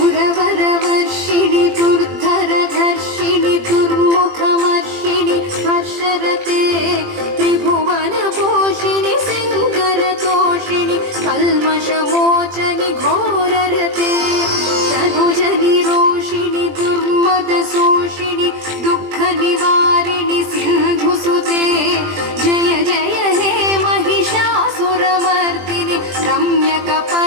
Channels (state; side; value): late; left; 20 ms